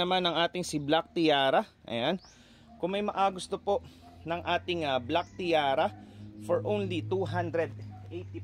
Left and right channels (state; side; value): identical; both; correlation 1.00